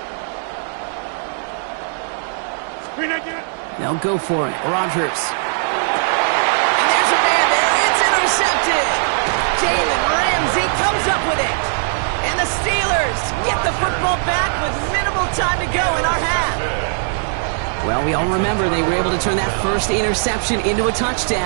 They'll go for it. Rodgers. And there's a man there. It's intercepted. Jalen Ramsey comes up with it. And the Steelers get the football back with minimal time to go in our half. Well, we all remember they were able to turn that first interception into a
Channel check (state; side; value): silent; left; 66 dB below the other